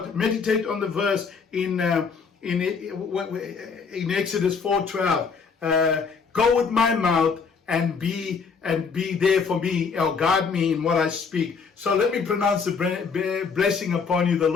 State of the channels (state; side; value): quieter; right; 5.4 dB